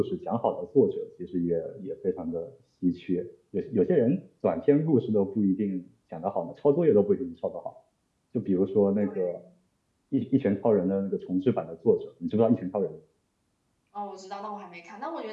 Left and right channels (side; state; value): both; identical; correlation 1.00